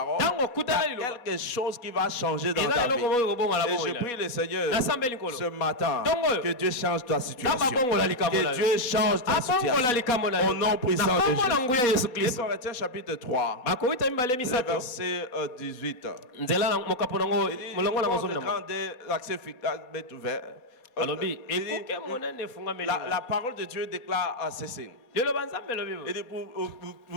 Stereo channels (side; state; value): right; late; 4.1 ms